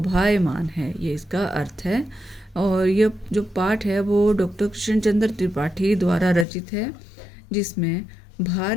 है, ये इसका अर्थ है। और यह जो पाठ है वो डॉक्टर कृष्ण चंद्र त्रिपाठी द्वारा रचित है, जिसमें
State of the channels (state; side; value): drops out; right; at 6.5 s